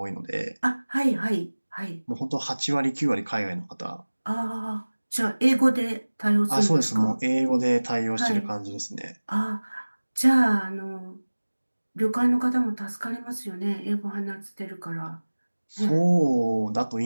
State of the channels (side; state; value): both; inverted; correlation -1.00